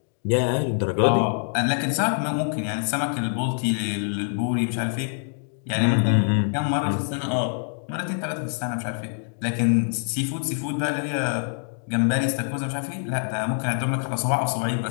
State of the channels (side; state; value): right; silent; 62 dB below the other